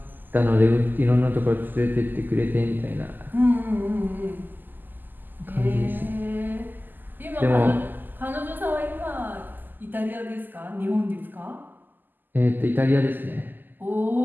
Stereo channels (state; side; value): late; left; 0.089 ms